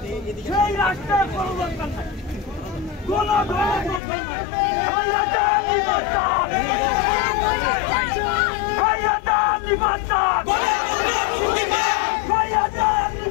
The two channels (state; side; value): drops out; right; at 4.0 s